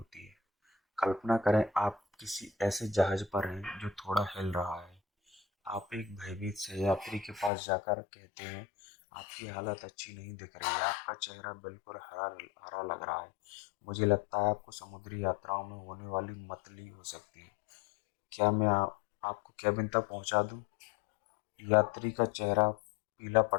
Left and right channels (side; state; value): right; drops out; at 7.5 s